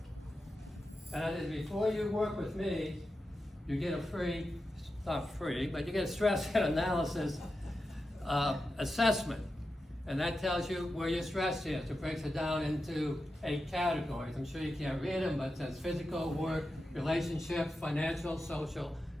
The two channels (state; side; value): normal; both; correlation 0.90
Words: And that is, before you work with me, you get a free, not free, but you get a stress analysis assessment. And that tells you where your stress is. It breaks it down into 8 categories. I'm sure you can't read them, but it says physical, work, relationships, financial, social,